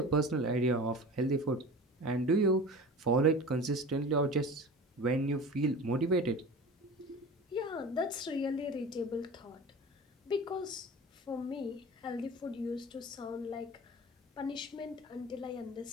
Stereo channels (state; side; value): normal; both; correlation 0.36